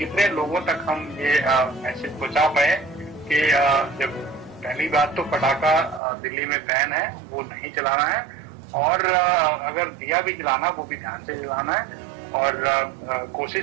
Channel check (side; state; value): left; drops out; at 6.0 s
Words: लोगों तक हम ये मैसेज पहुंचा पाए कि जब पहली बात तो पटाखा दिल्ली में बैन है, वो नहीं चलाना है, और अगर दिया भी जलाना वो भी ध्यान से जलाना है और